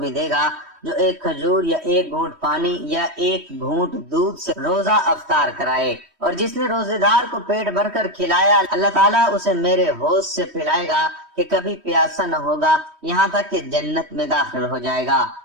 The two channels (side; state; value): left; late; 3.1 ms